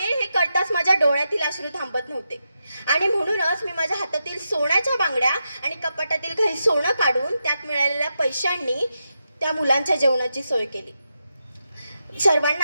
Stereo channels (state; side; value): inverted; both; correlation -0.87